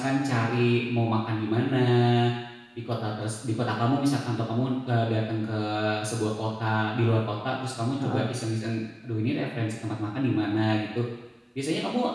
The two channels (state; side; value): identical; both; correlation 1.00